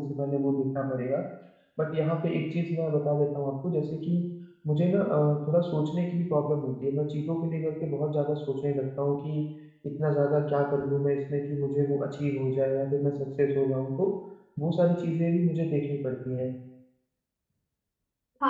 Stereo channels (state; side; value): identical; both; correlation 1.00